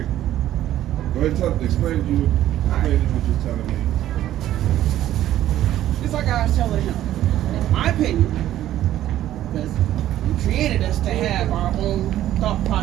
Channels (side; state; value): left; quieter; 12.8 dB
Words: Go ahead and explain what you're telling me. It's like I was telling him, in my opinion, because he created us to have our own thought